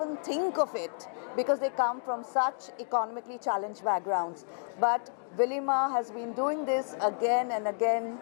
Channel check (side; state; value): right; silent; digital silence